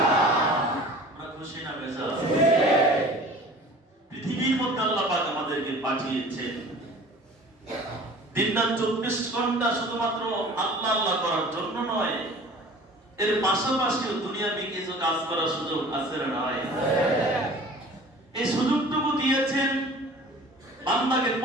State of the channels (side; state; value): both; normal; correlation 0.44